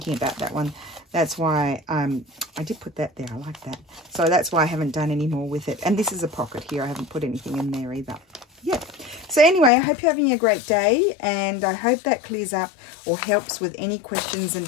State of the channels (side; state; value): right; drops out; at 9.7 s